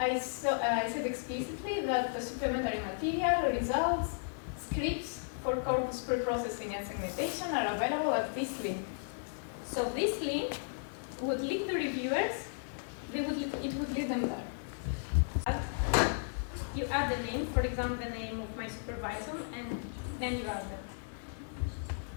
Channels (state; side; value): silent; right; 55 dB below the other